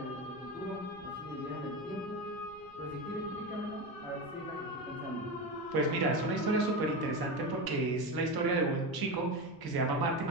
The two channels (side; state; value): right; noise; rumble, 25 dB below the sound